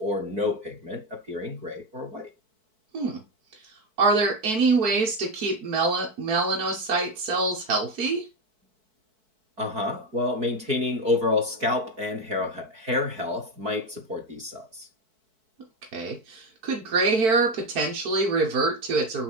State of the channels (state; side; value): late; left; 4.6 ms